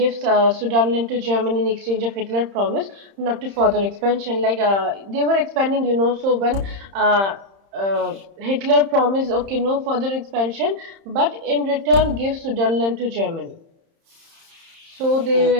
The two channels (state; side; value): late; left; 31 ms